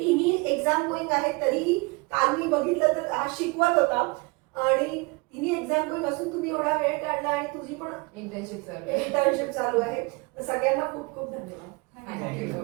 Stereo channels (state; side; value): quieter; left; 26.5 dB